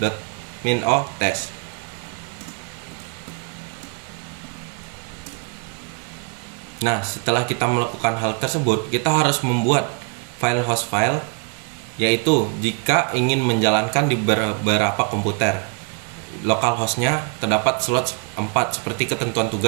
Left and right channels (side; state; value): left; quieter; 35.7 dB